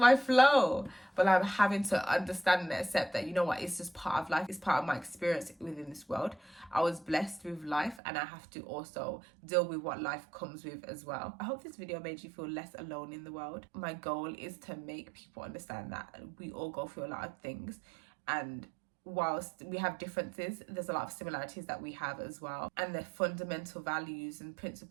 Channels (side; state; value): left; drops out; at 8.0 s